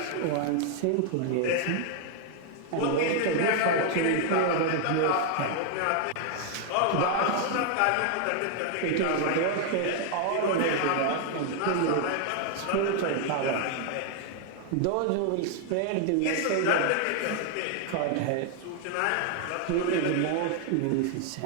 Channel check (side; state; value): both; different; correlation 0.00